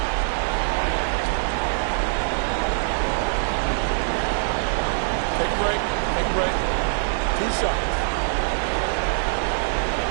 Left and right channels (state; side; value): silent; left; digital silence